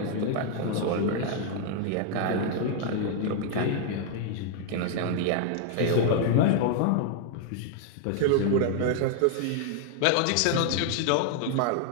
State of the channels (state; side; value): different; both; correlation 0.00